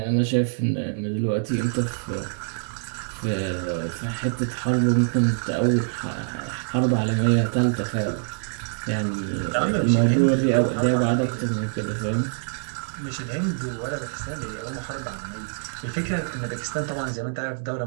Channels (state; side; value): silent; left; digital silence